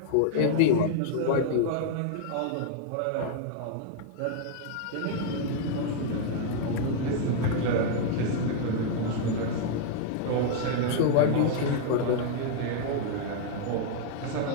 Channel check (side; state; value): both; different; correlation -0.01